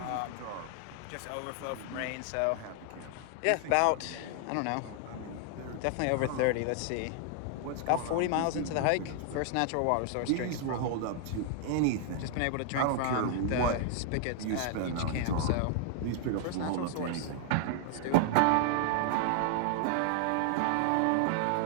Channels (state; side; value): different; both; correlation 0.00